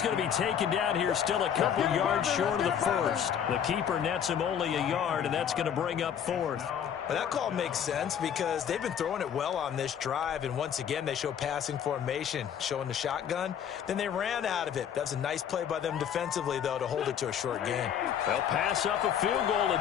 going to be taken down here still a couple yards short of the first. The keeper nets him only a yard, and that's going to bring up fourth. Well, that call makes sense because they've been throwing it well on this drive, and once again they show passing formation, showing the shotgun. Then they ran out of it. That was a nice play by them defensively, though, to hold it to a short gain. They'll pass up a field goal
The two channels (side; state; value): right; quieter; 8.7 dB